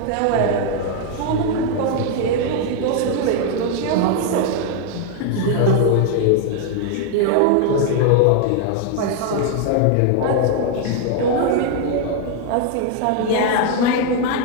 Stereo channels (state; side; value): different; both; correlation 0.00